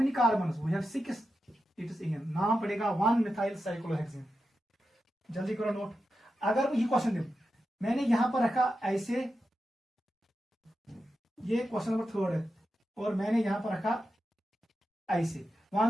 carbons, we have 6, it is ane. नाम पड़ेगा 1 मिथाइल साइक्लोहेक्सिन। जल्दी करो नोट। अगर ये क्वेश्चन दे, मैंने यहां पर रखा ऐसे, ये क्वेश्चन नंबर 3 है, और मैंने यहां पर रखा ऐसे।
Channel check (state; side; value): normal; both; correlation 0.90